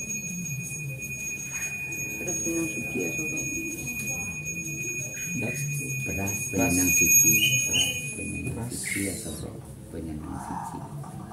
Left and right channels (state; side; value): identical; both; correlation 1.00